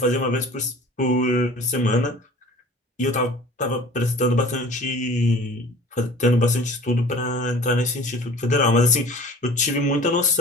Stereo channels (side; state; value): both; normal; correlation 0.45